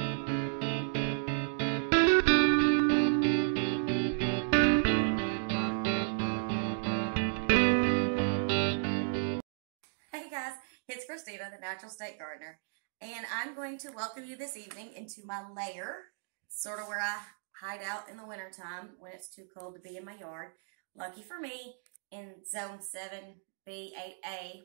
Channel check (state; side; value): silent; left; digital silence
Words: guys, it's Christina, the Natural State Gardener, and I'm going to welcome you this evening into my lair, sort of where I hide out in the wintertime when it's too cold to be in my yard. Lucky for me, in Zone 7B, 8A,